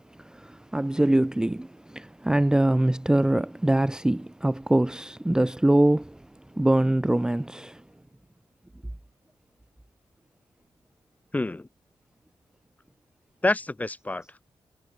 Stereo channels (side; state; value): both; normal; correlation 0.98